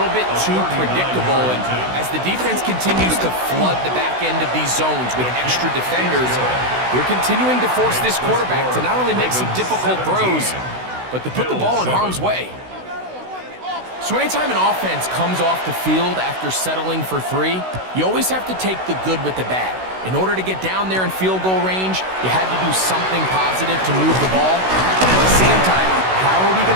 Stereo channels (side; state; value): left; late; 16 ms